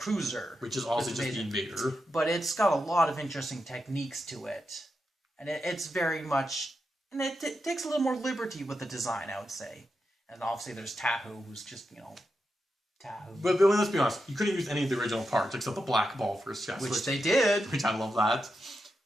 Which is also just the Invader. But it's got a lot of interesting techniques to it. And it's very much... And it takes a little more liberty with the design, I would say. And obviously there's Tahoe, who's just, Tahoe. But let's be honest, you couldn't use any of the original parts except the black ball for his chest. Which they did. Which I love that.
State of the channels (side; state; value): both; normal; correlation 0.87